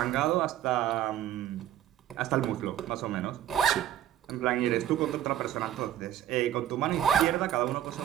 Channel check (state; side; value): quieter; left; 11.5 dB